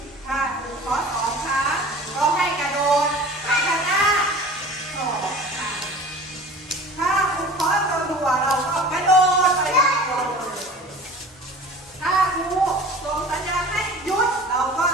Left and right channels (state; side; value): normal; both; correlation 0.41